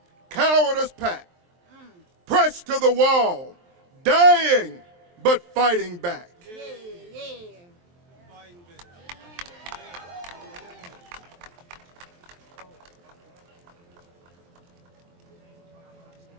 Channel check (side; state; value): left; late; 23 ms